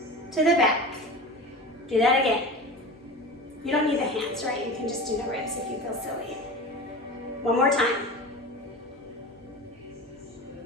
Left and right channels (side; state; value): both; normal; correlation 0.32